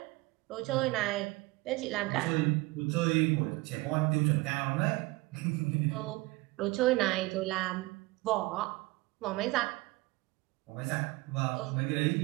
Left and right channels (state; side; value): quieter; left; 22.0 dB